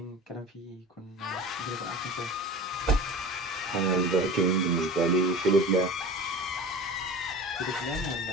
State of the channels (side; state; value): both; normal; correlation 0.35